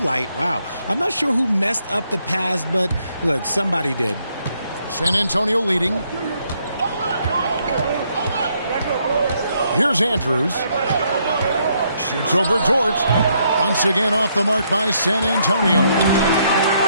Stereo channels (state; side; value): inverted; both; correlation -0.73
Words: Wow. I'm not sure who messed up the pass, but look, somebody did. San Antonio leading. Here's Andrews. Shoots over Dort. Once again off the mark by San Antonio.